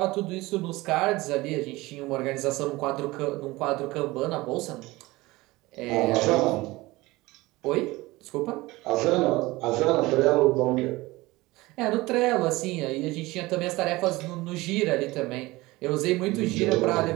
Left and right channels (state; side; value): quieter; left; 20.5 dB